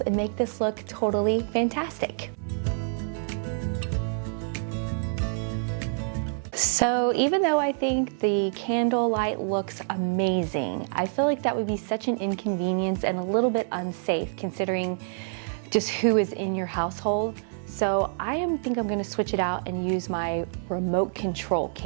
and make this look totally fantastic. So even though I think the candlelight looks amazing, I feel like that would be such an inconvenience and a little bit unsafe considering just who is in your household. So I think I'm gonna switch it out and use my remote control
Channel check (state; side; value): silent; left; digital silence